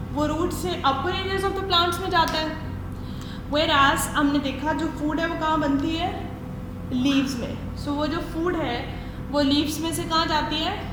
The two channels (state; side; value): identical; both; correlation 1.00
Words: वो रूट्स से अपर एरियाज ऑफ द प्लांट्स में जाता है. Whereas हमने देखा जो फूड है वो कहाँ बनती है, लीव्स में. सो वो जो फूड है वो लीव्स में से कहाँ जाती है,